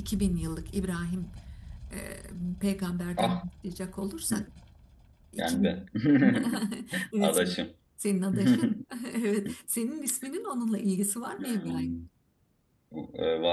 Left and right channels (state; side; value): identical; both; correlation 1.00